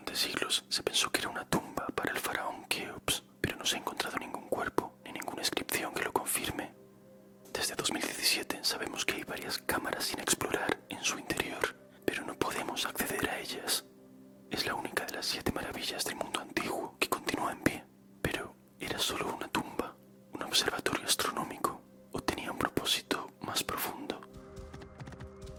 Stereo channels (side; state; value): both; identical; correlation 1.00